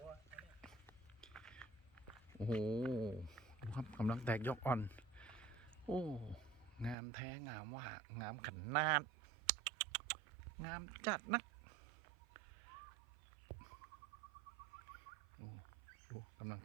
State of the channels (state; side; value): drops out; left; at 7.0 s